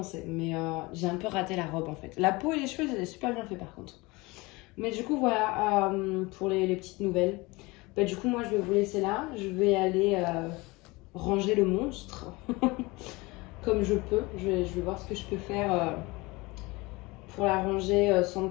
Mais j'ai un peu raté la robe, en fait. La peau et les cheveux, j'ai super bien fait, par contre. Mais du coup, voilà, pour les petites nouvelles. Bah, du coup, moi, je vais vous laisser là. Je vais aller ranger le monstre comme je peux. Je vais voir ce que je peux faire pour la ranger sans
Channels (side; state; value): right; quieter; 23.6 dB